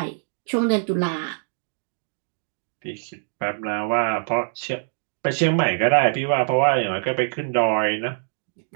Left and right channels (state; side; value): silent; left; digital silence